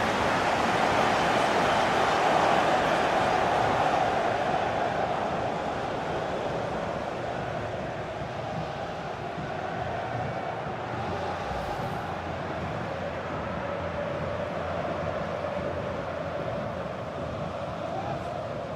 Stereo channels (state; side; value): identical; both; correlation 1.00